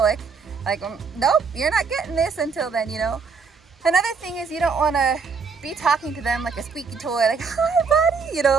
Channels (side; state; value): left; quieter; 5.2 dB